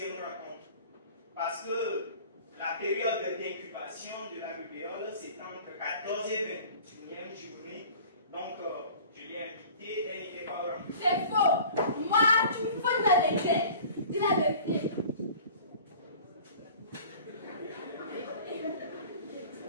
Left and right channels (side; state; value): both; inverted; correlation -0.45